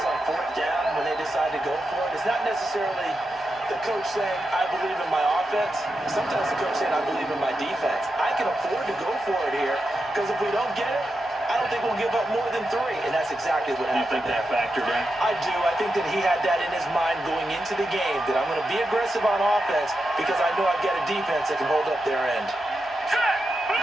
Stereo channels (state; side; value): normal; both; correlation 0.88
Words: on fourth down, when they decide to go for it, it's not necessarily the coach saying, I believe in my offense. Sometimes the coach saying, I believe in my defense. I can afford to go for it here, because if we don't get it, I don't think we'll give up more than 3, and that's exactly what happened. You think that factored in? I do. I think that he had that in his mind going into the game, that I'm going to be aggressive on offense because I know I've got a defense that can hold up their end.